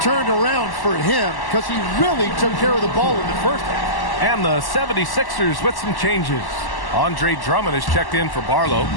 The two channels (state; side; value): late; right; 1.1 ms